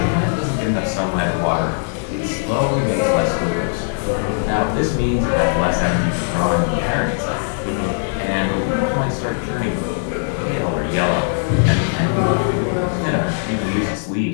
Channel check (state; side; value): silent; right; 66 dB below the other